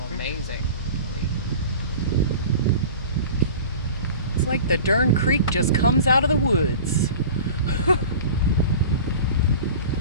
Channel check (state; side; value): inverted; both; correlation -0.38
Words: amazing. It's like the darn creek just comes out of the woods.